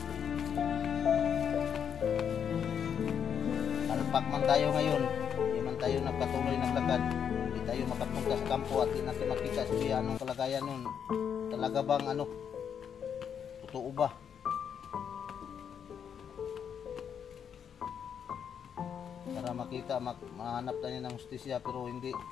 Alpak man tayo ngayon. Hindi man tayo nagpatuloy naglakad. Tayo makapunta sa kampo at hindi natin makita siya anong kalagayan nun. Talaga bang ano, totoo ba? Para makita, mahanap tayo ng justisya pero hindi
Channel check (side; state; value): right; quieter; 7.8 dB